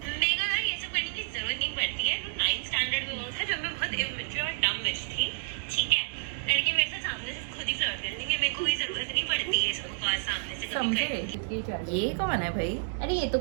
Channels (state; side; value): silent; left; digital silence